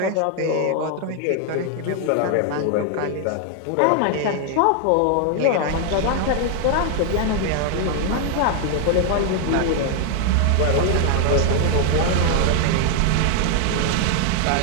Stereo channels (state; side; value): different; both; correlation 0.00